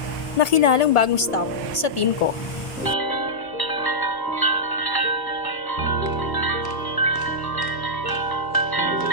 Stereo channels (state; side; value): late; right; 1.5 ms